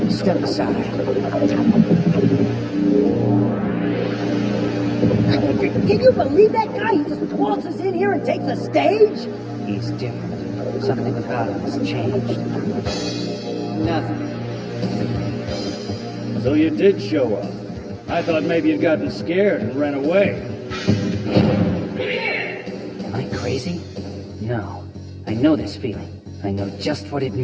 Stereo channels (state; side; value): identical; both; correlation 1.00